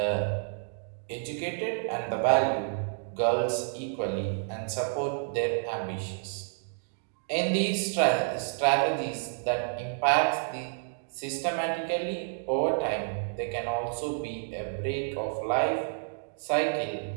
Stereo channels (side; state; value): left; silent; digital silence